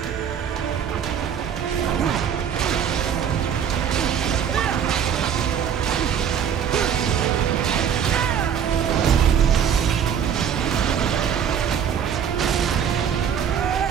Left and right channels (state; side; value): quieter; left; 8.2 dB